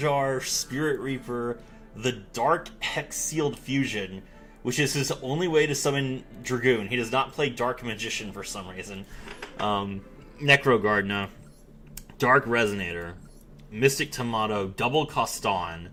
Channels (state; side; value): identical; both; correlation 1.00